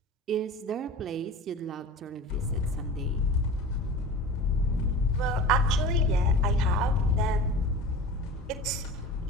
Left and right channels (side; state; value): both; normal; correlation 0.36